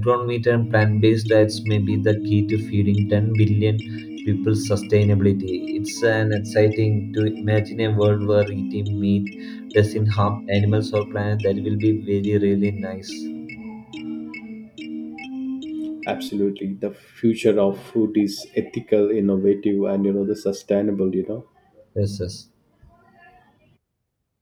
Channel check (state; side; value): identical; both; correlation 1.00